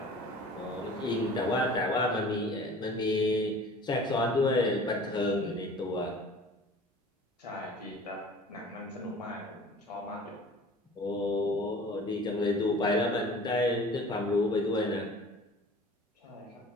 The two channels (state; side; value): normal; both; correlation 0.45